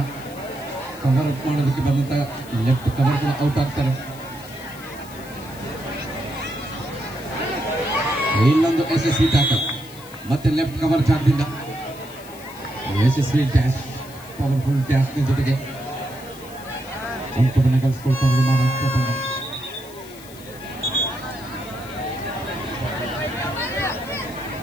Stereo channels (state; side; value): noise; left; hiss, 20 dB below the sound